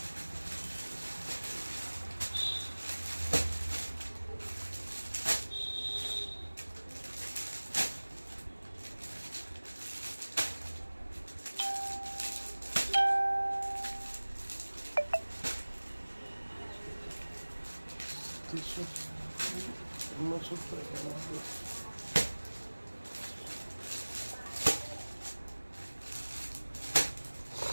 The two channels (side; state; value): both; inverted; correlation -1.00